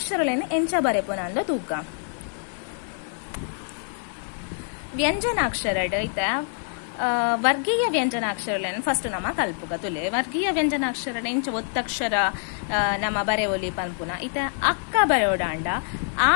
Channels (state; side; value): silent; right; 61 dB below the other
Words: ಎಂಚ ಬರೆಪುನಂದ ತೂಕ ವ್ಯಂಜನಾಕ್ಷರಡ್ ಐತ ವರ್ಗೀಯ ವ್ಯಂಜನಾಕ್ಷರಗಳನ್ನು ಫಸ್ಟ್ ನಮ್ಮ ಕಲ್ಪುಗ ತುಲೆ ವರ್ಗೀಯ ವ್ಯಂಜನಾಕ್ಷರ ಇಂಚ ಒತ್ತಕ್ಷರ ನಮ್ಮ ಬರೆವೊಲಿ ಪನ್ಪುನ ಇತ ಅಕ್ಕ ಬರೆಯೋಡಾಂಡ ಆ